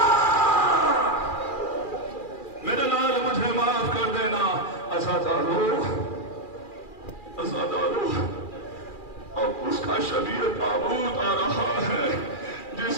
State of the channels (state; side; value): late; right; 2.4 ms